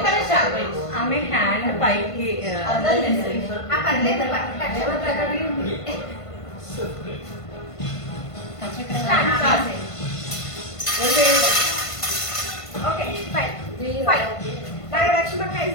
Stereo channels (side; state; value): right; late; 1.5 ms